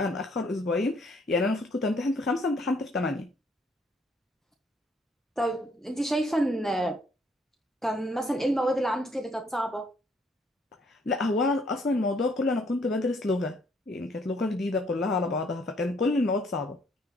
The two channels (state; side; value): normal; both; correlation 0.66